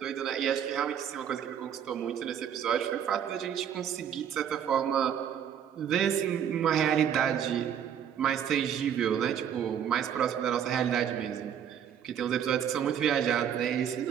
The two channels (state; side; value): quieter; left; 8.9 dB